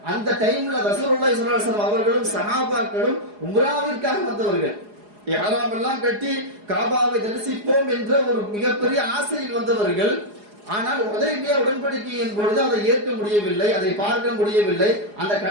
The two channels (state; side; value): late; left; 4.8 ms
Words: அந்த டைம்ல ரசூலுல்லாஹி ஸல்லல்லாஹு அலைஹி வஸல்லம் அவர்களும் சஹாபாக்களும் உம்ராவிற்காக வந்தவர்கள். இஹ்ராம் எல்லாம் கட்டி காபாவை தரிசிப்போம் என்ற ஒரு மிகப்பெரிய ஆசையில் வந்தவர்கள். ஆனால் ஹுதைபியா உடன்படிக்கையின் பொழுது அதை ஏற்க முடியவில்லை, அதை பார்க்க முடியவில்லை, அந்த